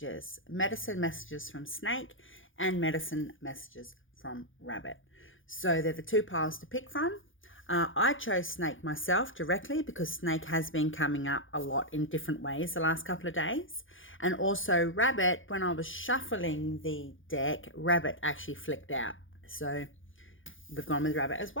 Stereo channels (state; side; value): late; right; 0.58 ms